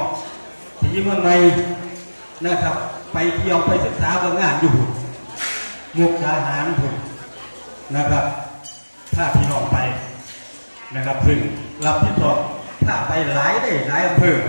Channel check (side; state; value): both; inverted; correlation -1.00